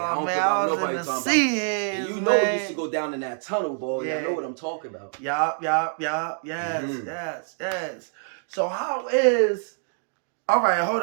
don't care about nobody talking about. And you know we used to go down in that tunnel, boy. Yeah. I know what I'm talking about. Yes. So how is... All right, hold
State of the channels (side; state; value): left; silent; 61 dB below the other